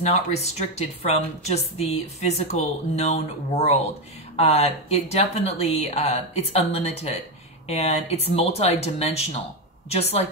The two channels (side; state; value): both; normal; correlation 0.10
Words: restricted from just the physical known world. It definitely, it's unlimited. And it's multi-dimensional, just